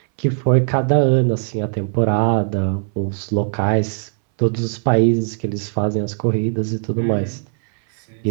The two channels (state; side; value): silent; left; 64 dB below the other